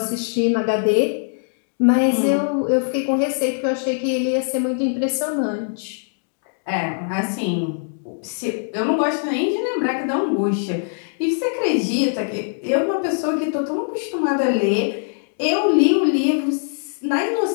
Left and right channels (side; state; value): right; silent; digital silence